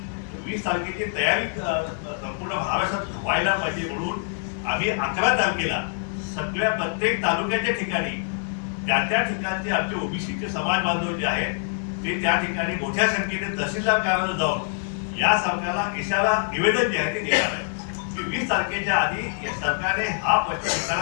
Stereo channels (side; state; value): right; silent; 61 dB below the other